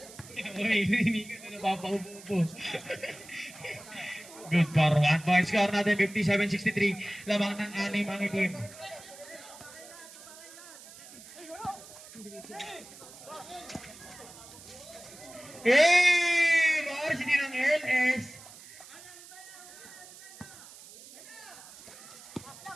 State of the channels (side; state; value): right; noise; hiss, 18 dB below the sound